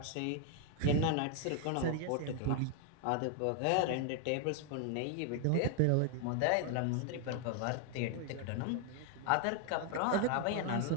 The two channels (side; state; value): both; different; correlation 0.00